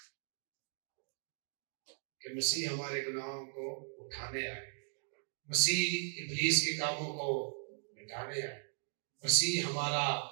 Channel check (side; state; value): left; silent; digital silence